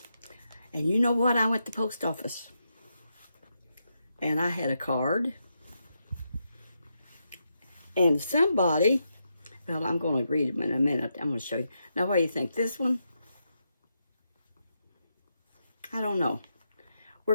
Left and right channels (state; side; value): inverted; both; correlation -0.83